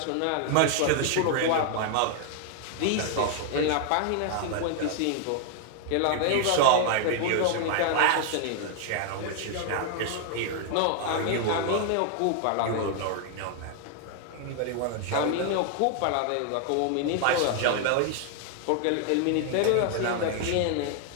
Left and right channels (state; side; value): different; both; correlation 0.00